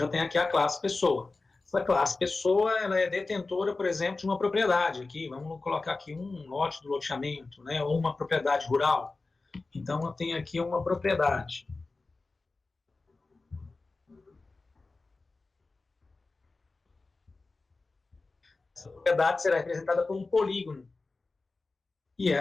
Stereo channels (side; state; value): right; quieter; 3.6 dB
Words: tem aqui a classe pessoa. Essa classe pessoa, ela é detentora, por exemplo, de uma propriedade aqui. Vamos colocar aqui um lote do loteamento, né, ou uma propriedade rural. Então, eu tenho aqui uma propriedade. Essa propriedade será representada por um polígono. E